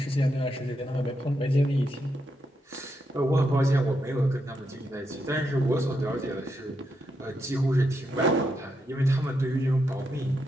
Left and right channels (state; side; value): normal; both; correlation 0.82